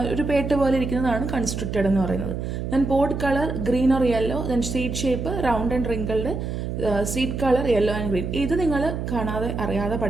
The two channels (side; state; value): right; noise; hum, 4 dB below the sound